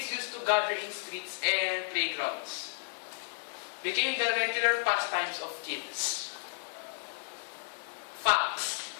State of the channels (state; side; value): silent; right; digital silence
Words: used to gather in streets and playgrounds. Became the regular pastimes of kids. Facts.